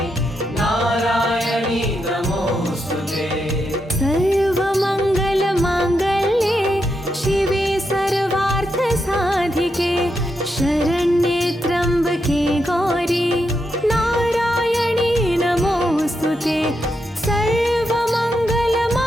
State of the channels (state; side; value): normal; both; correlation 0.83